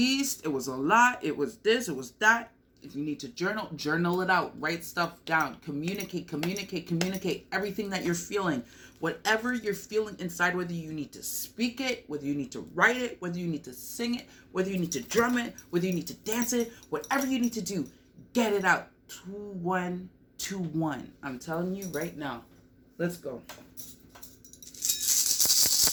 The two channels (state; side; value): identical; both; correlation 1.00